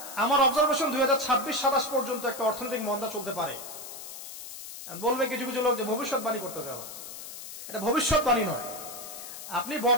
আমার অবজারভেশন 2026-27 পর্যন্ত একটা অর্থনৈতিক মন্দা চলতে পারে। বলবে কিছু কিছু লোক যে ভবিষ্যৎবাণী করতেছে। আবার এটা ভবিষ্যৎবাণী নয়। আপনি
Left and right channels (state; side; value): noise; left; hiss, 11 dB below the sound